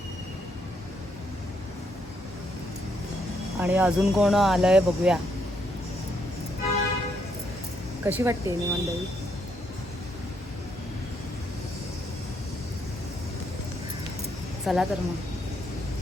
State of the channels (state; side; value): normal; both; correlation 0.74